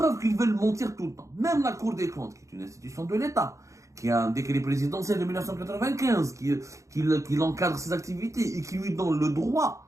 qu'ils veulent mentir tout le temps. Même la Cour des comptes, qui est une institution de l'État, qui a un décret présidentiel de 1995, qui encadre ses activités et qui lui donne le droit,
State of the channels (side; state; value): left; late; 0.15 ms